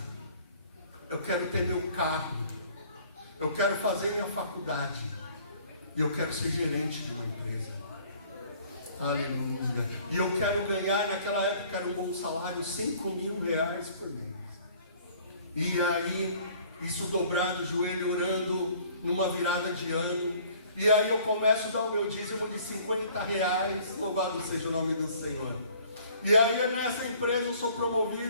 eu quero ter meu carro, eu quero fazer minha faculdade, e eu quero ser gerente de uma empresa. Aleluia. E eu quero ganhar, naquela época era um bom salário, R$5.000 por mês. E aí, isso dobrado o joelho, orando numa virada de ano. E aí eu começo a dar o meu dízimo de R$50. Louvado seja o nome do Senhor. E aí nessa empresa eu sou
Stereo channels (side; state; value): both; inverted; correlation -0.55